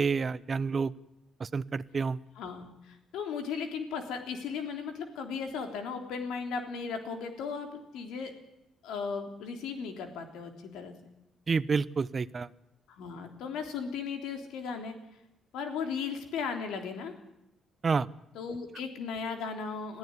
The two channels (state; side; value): normal; both; correlation 0.70